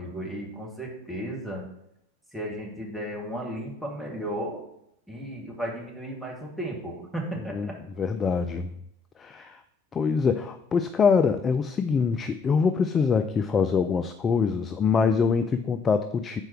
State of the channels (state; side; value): quieter; right; 4.8 dB